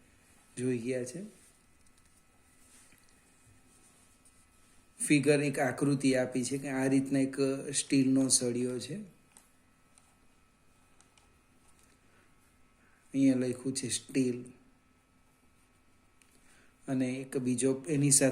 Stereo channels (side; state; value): both; identical; correlation 1.00